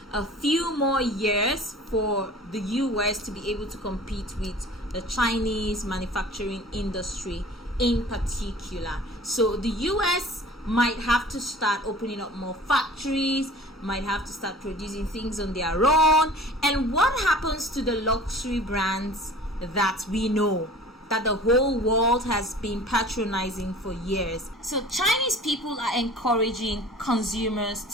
a few more years for the US to be able to compete with the Chinese manufacturing industry in particular. So the US might have to start opening up more factories, might have to start producing things on their own. And what happens to the luxury brands that we know, that the whole world has been patronizing for years? So Chinese people are encouraging consumers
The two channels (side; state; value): both; normal; correlation 0.44